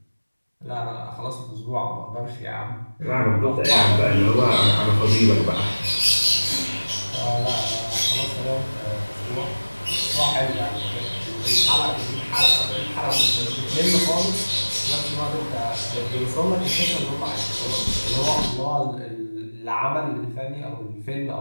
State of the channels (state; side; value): inverted; both; correlation -1.00